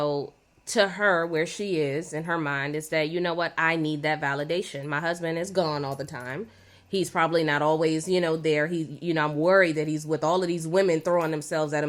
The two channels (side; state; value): both; identical; correlation 1.00